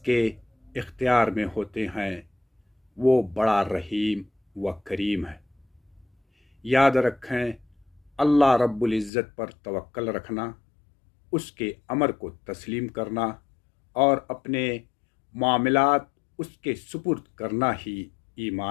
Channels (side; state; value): right; drops out; at 9.1 s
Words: इख्तियार में होते हैं वो बड़ा रहीम व करीम है। याद रखें, अल्लाह रब्बुल इज़्ज़त पर तवक्कल रखना, उसके अमर को तस्लीम करना और अपने मामलात उसके सुपुर्द करना ही